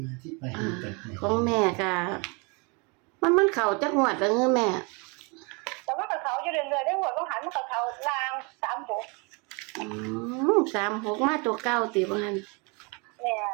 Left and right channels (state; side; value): quieter; left; 31.2 dB